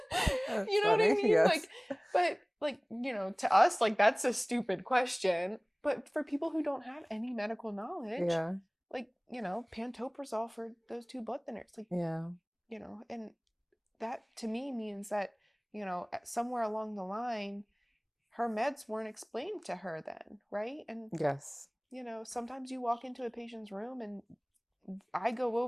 you know what I mean? Yes. Like, but like, to us, like, that's a stupid question. But for people who don't have any medical knowledge, Yeah. like, pantoprazole for those 2 blood thinners, like, Yeah. and that to me means that, somewhere along the line, her meds weren't explained to her then, right? And Yes. sometimes you walk into a patient's room and I go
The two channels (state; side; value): identical; both; correlation 1.00